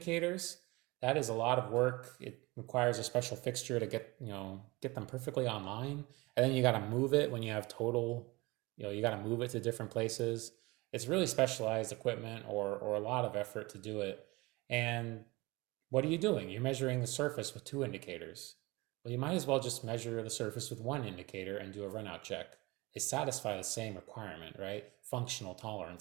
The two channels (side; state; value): left; quieter; 23.0 dB